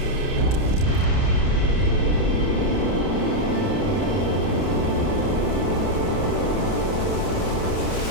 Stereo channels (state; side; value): late; right; 30 ms